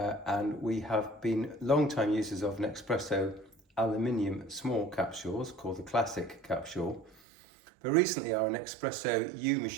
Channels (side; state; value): left; drops out; at 7.2 s